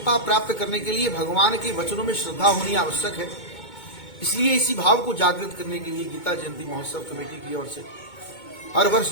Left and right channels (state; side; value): late; right; 2.2 ms